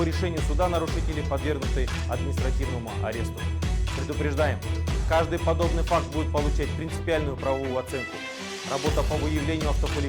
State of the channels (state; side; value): identical; both; correlation 1.00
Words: решению суда нарушители подвергнуты административному аресту. Предупреждаем, каждый подобный факт будет получать принципиальную правовую оценку. Работа по выявлению